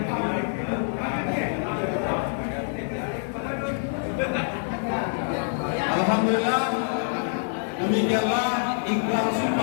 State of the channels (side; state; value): right; silent; digital silence